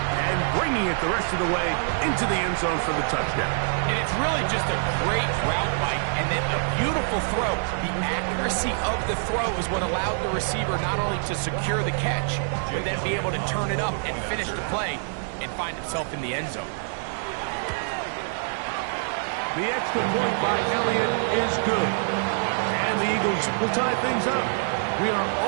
and bringing it the rest of the way into the end zone for the touchdown. And it's really just a great route, Mike, and then a beautiful throw. The accuracy of the throw is what allowed the receiver not only to secure the catch, but then be able to turn it up and finish the play and find himself in the end zone. The extra point by Elliott is good. And the Eagles will tie things up. We are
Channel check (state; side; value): silent; left; digital silence